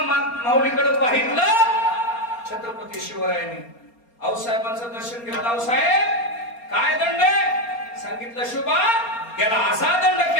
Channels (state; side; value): late; right; 4.3 ms